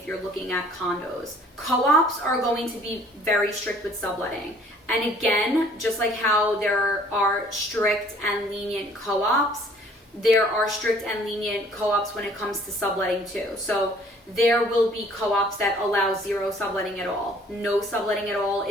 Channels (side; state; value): both; normal; correlation 0.56